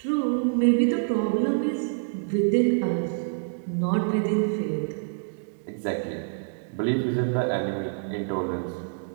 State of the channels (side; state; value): left; silent; digital silence